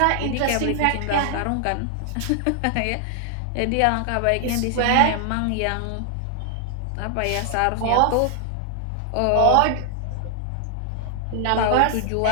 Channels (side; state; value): both; different; correlation 0.00